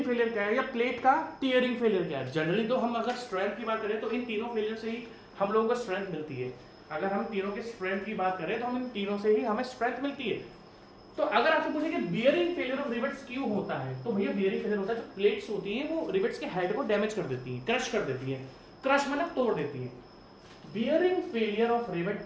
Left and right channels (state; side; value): identical; both; correlation 1.00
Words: फेलियर क्या है, या प्लेट का टियरिंग फेलियर क्या है। जनरली तो हम अगर स्ट्रेंथ की बात करें तो इन तीनों फेलियर से ही हम लोगों को स्ट्रेंथ मिलती है। अगर हम तीनों के स्ट्रेंथ की बात करें तो हम इन तीनों से ही हमें स्ट्रेंथ मिलती है। तो अगर आपसे पूछे कि बियरिंग फेलियर ऑफ रिवेट्स क्यों होता है, तो भैया बियरिंग फेलियर होता है, जो प्लेट्स होती हैं वो रिवेट्स के हेड को डैमेज कर देती हैं, क्रश कर देती हैं, क्रश मतलब तोड़ देती हैं। Bearing failure of rivet